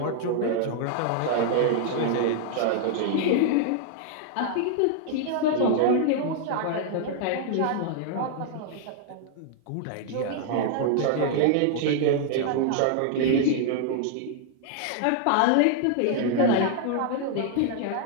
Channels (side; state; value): both; different; correlation 0.00